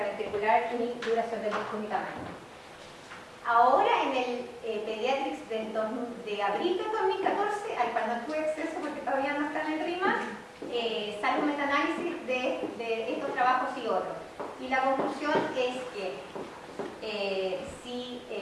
ni duración del ducto ni tamaño. Ahora en el Pediatrics de abril del 2014, al cual no tuve acceso porque todavía no está en el RIMA, sale un metaanálisis de estos trabajos y otros. Y la conclusión es que si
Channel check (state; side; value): identical; both; correlation 1.00